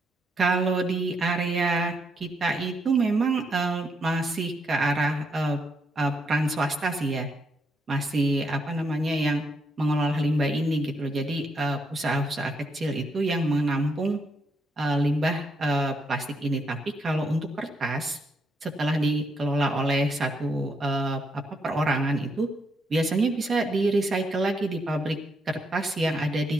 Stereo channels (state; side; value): normal; both; correlation 0.77